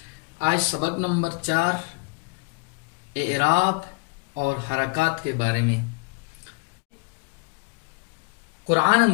आज सबक नंबर 4 एराब और हरकत के बारे में। कुरान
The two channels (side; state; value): right; quieter; 31.4 dB